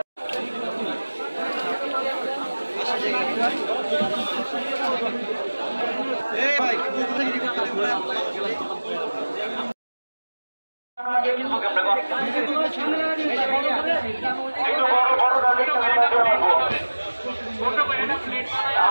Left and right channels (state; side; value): inverted; both; correlation -1.00